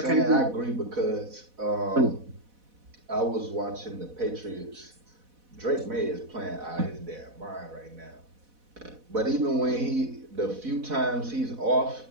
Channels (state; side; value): late; left; 4.1 ms